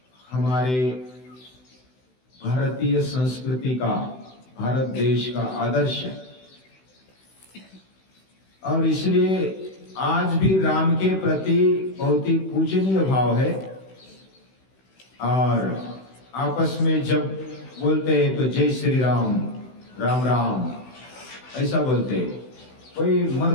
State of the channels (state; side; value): late; right; 16 ms